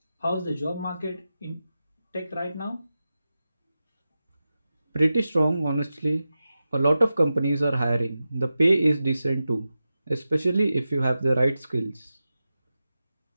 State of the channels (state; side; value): inverted; both; correlation -0.92